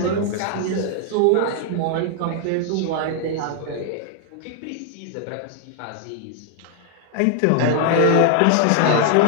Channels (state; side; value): different; both; correlation 0.00